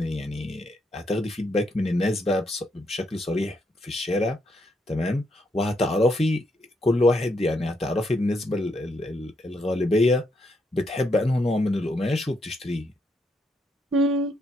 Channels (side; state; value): both; normal; correlation 0.77